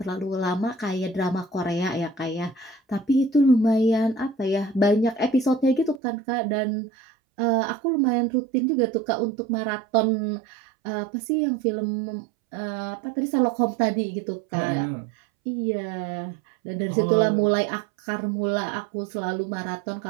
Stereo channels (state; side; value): drops out; left; at 6.0 s